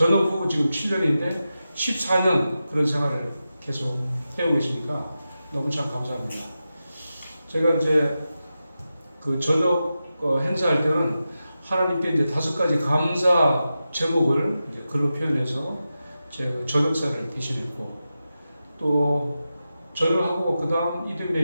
후 지금 7년인데 14년 그런 생활을 계속 해오고 있으니까 너무 참 감사합니다. 제가 이제 그 전역 행사할 때는 하나님께 이제 5가지 감사 제목을 이제 글로 표현해서 제가 전역사를 대신했고 또 전역하고 그 다음 이듬해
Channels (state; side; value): inverted; both; correlation -0.91